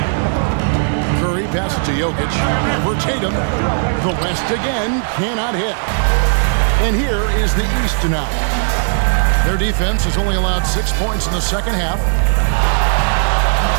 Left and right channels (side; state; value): left; silent; 69 dB below the other